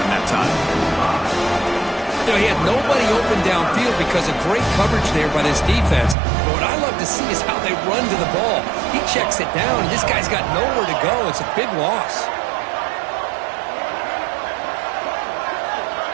that time. You know, he had nobody open downfield because of great coverage there by this defense. But what I love to see is how they run to the ball. He checks it down, and this guy's got nowhere to go. It's a big loss.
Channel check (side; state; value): left; drops out; at 6.2 s